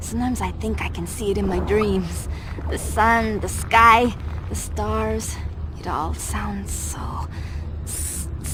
I think I can see it in my dreams. The sun, the sky, the stars. It all sounds so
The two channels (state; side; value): identical; both; correlation 1.00